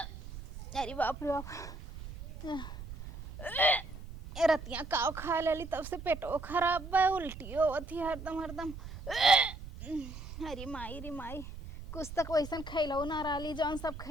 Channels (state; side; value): noise; right; rumble, 12 dB below the sound